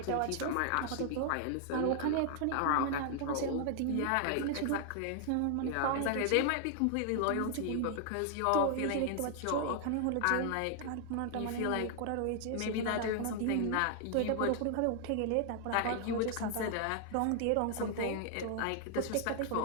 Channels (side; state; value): both; different; correlation 0.00